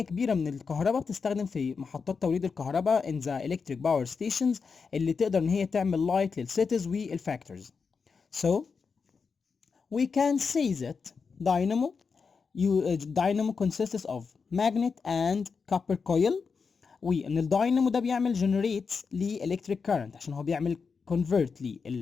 كبيرة من الكهرباء بتستخدم في محطات توليد الكهرباء in the electric power stations اللي تقدر ان هي تعمل لايت للسيتيز والفاكتورز. So we can say that dynamo consists of magnet and copper coil وان الداينامو ده بيعمل generates ل electric current عشان هو بيعمل convert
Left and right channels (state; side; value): quieter; right; 5.3 dB